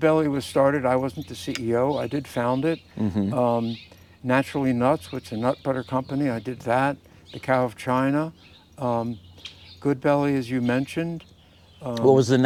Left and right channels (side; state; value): both; identical; correlation 1.00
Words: was started. I wasn't the CEO. I did found it. Naturally Nuts, which is a nut butter company, I did that. The Cow of China. Good Belly, as you mentioned. What was the